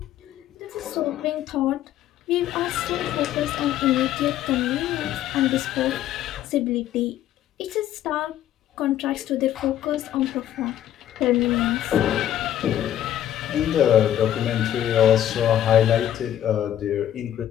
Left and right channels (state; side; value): quieter; right; 11.5 dB